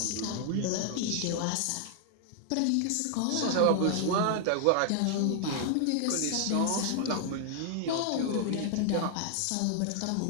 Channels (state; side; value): different; both; correlation 0.00